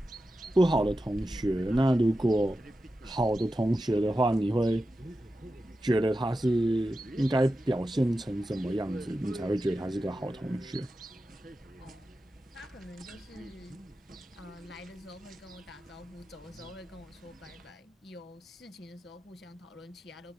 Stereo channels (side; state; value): both; normal; correlation 0.91